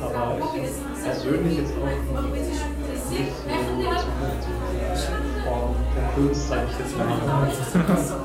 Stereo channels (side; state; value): both; identical; correlation 1.00